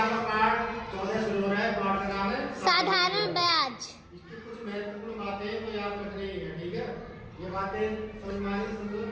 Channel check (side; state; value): both; identical; correlation 1.00